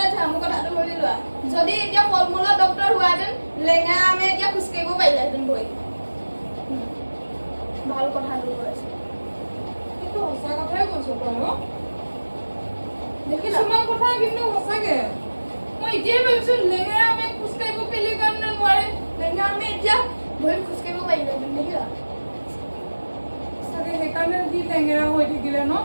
থা মোৰ কথাটো শুনি লোৱা যদি এতিয়া ফল-মূলৰ ডক্টৰ হোৱাহেঁতেন লেঙা আমি এতিয়া খোজকাঢ়িব পাৰিলেহেঁতেন বহি ভাল কথাটো কৈছে কিন্তু সঁচা কথাই কৈছো তই দেখিলা কিছুমান কথা কিন্তু সঁচাকে মই এতিয়াই ভাবিছো লেঙেৰা আমি খোজকাঢ়িব কেলে কাৰণে নোৱাৰে লেঙা আমি এতিয়া বহি খোজকাঢ়িব পাৰিলেহেঁতেন দেখিলা সঁচাকে সেইকাৰণে যি লেঙেৰা হৈ থাকিলে ন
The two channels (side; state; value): both; inverted; correlation -1.00